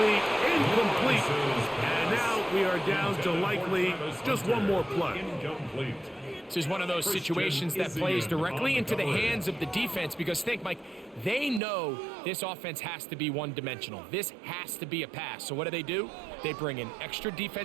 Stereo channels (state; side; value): drops out; left; at 11.6 s